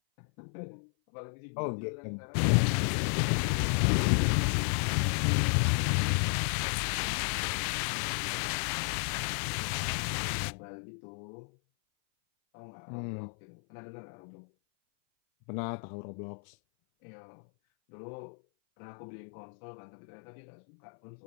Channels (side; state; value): right; silent; 56 dB below the other